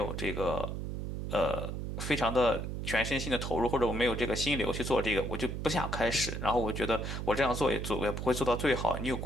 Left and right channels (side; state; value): right; noise; hum, 4 dB below the sound